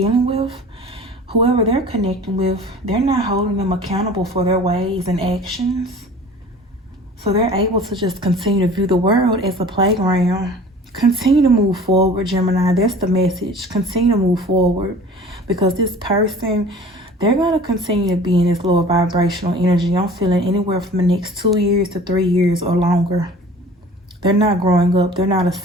with, whoever they're connecting with, they're not holding them accountable for their ways and actions. So they're able to just continue to view the world as a playground. Continue to move forward, Gemini. That's the message. Continue to move forward. Because this person, they're going to continue to be in this lower vibrational energy. I'm feeling anywhere from the next 2 years to 3 years or longer. They're not growing up. They're not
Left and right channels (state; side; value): normal; both; correlation 0.44